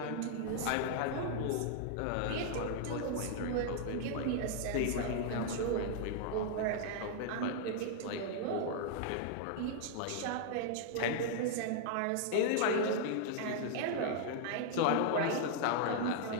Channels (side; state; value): both; different; correlation -0.01